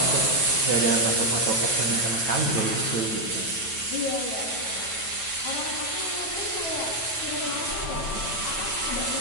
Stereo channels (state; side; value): late; right; 9.1 ms